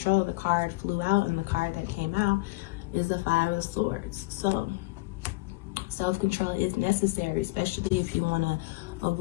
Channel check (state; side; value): quieter; right; 22.6 dB